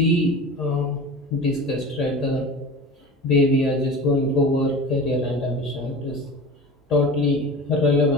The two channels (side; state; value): both; normal; correlation 0.35